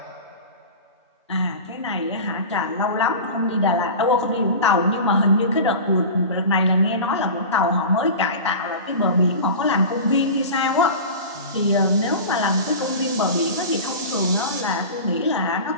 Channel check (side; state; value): both; inverted; correlation -0.32